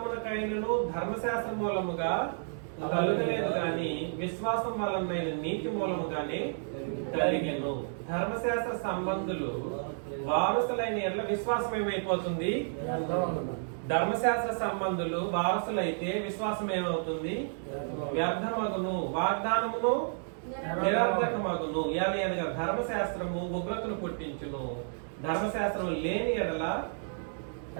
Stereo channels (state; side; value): silent; left; digital silence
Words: ధర్మశాస్త్ర మూలముగా కలుగలేదు గాని విశ్వాసం వలన నీతి మూలముగానే కలిగెను. ధర్మశాస్త్ర సంబంధులు వారసులైన ఎట్ల విశ్వాసం ఏమైపోతుంది? ధర్మశాస్త్ర సంబంధులు వారసులైతే విశ్వాసం ఏమవుతుంది? వ్యర్థమగును, వాగ్దానమును నిరర్థకమగును. అనగా ధర్మశాస్త్రము ఉగ్రతను పుట్టించును, ధర్మశాస్త్రం లేని ఎడల